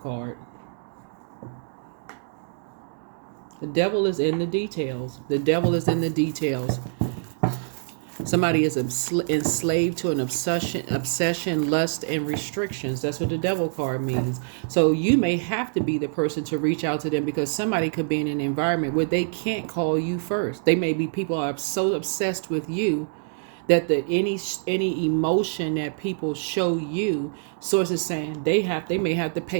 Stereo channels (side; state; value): left; silent; digital silence